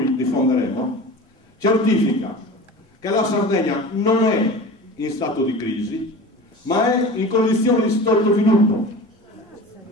diffonderemo certifica che la Sardegna non è in stato di crisi, ma è in condizioni di sottosviluppo.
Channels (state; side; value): normal; both; correlation 0.35